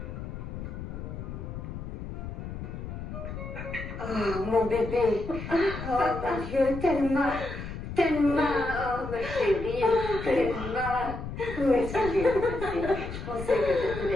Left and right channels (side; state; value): left; noise; rumble, 8 dB below the sound